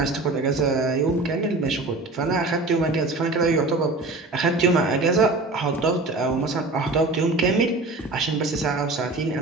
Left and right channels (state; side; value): quieter; left; 3.1 dB